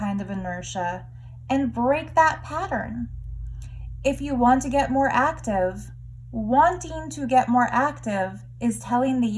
of inertia, and break that pattern. If you want to get more active, wanting to get more active is telling the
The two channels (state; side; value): identical; both; correlation 1.00